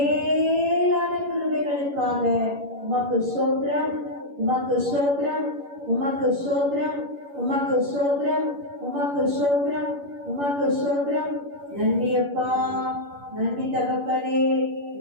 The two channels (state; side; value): late; left; 11 ms